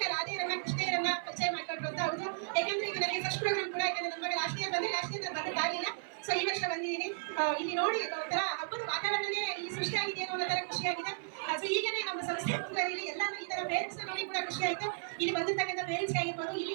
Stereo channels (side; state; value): left; silent; 55 dB below the other